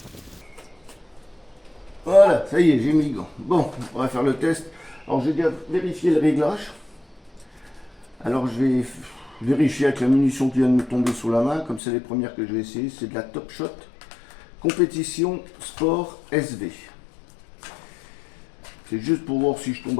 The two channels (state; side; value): drops out; right; at 11.8 s